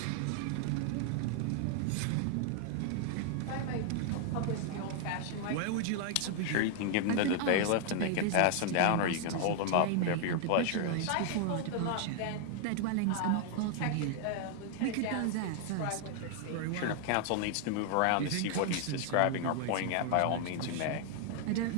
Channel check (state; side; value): different; both; correlation 0.00